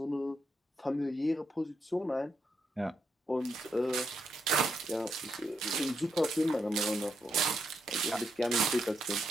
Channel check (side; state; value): both; normal; correlation 0.80